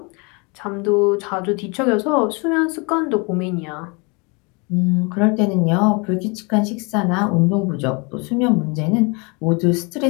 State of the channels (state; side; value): quieter; right; 30.4 dB